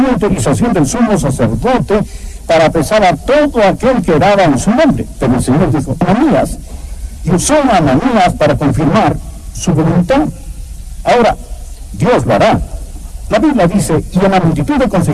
autorización del sumo sacerdote para apresar a todo aquel que oraba en su nombre. Pero el Señor dijo: Ananías, y usó a Ananías para confirmar su voluntad. Ahora, Dios lo hará. La Biblia dice: y en la multitud de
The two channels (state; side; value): identical; both; correlation 1.00